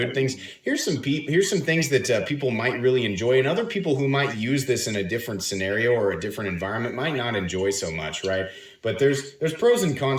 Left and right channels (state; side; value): identical; both; correlation 1.00